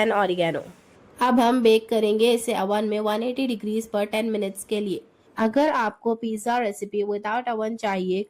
oregano. अब हम बेक करेंगे इसे ओवन में 180 डिग्रीज पर 10 मिनट्स के लिए। अगर आपको पिज्जा रेसिपी विदाउट ओवन चाहिए,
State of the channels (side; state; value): both; identical; correlation 1.00